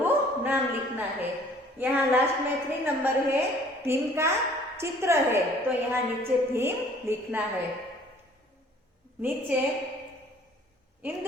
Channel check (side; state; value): both; normal; correlation 0.55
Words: नाम लिखना है। यहाँ लास्ट में 3 नंबर है भीम का चित्र है तो यहाँ नीचे भीम लिखना है। नीचे